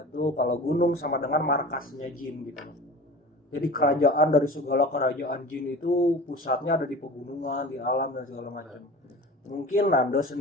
tuh kalau gunung sama dengan markasnya jin gitu. Jadi kerajaan dari segala kerajaan jin itu pusatnya ada di pegunungan, di alam dan segala macam. Mungkin Nando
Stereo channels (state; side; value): normal; both; correlation 0.37